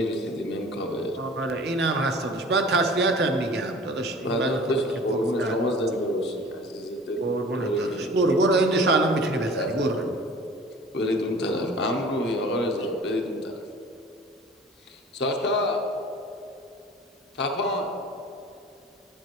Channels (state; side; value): normal; both; correlation 0.44